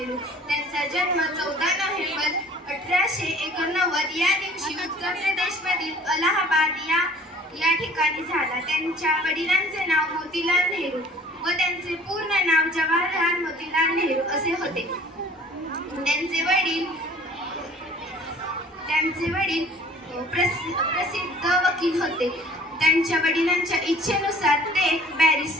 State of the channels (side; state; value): both; normal; correlation 0.51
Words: त्यांचा जन्म 14 नोव्हेंबर 1889 या दिवशी उत्तर प्रदेशमधील अलाहाबाद या ठिकाणी झाला। त्यांच्या वडिलांचे नाव मोतीलाल नेहरू व त्यांचे पूर्ण नाव जवाहरलाल मोतीलाल नेहरू असे होते। त्यांचे वडील प्रसिद्ध वकील होते। त्यांच्या वडिलांच्या इच्छेनुसार ते